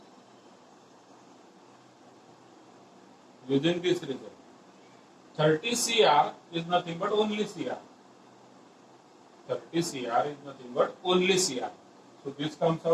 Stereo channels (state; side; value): identical; both; correlation 1.00